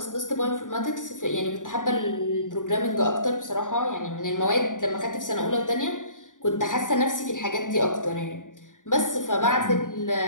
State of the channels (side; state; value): right; late; 0.88 ms